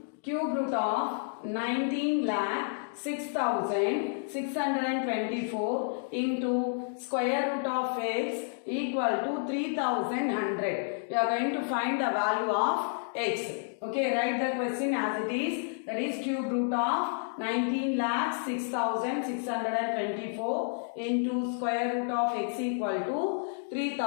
cube root of 19 lakh 6,624 into square root of x equal to 3,100. We are going to find the value of x. Okay, write the question as it is. That is cube root of 19 lakh 6,624 into square root of x equal to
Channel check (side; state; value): right; silent; digital silence